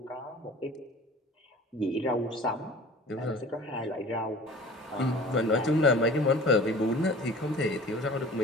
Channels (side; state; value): both; normal; correlation 0.43